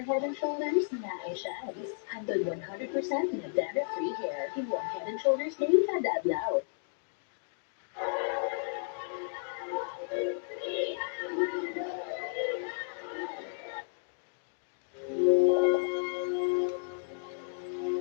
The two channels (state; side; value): silent; right; digital silence